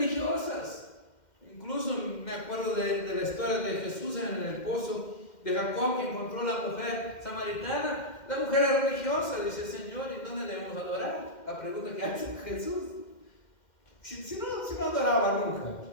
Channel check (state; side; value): late; right; 2.1 ms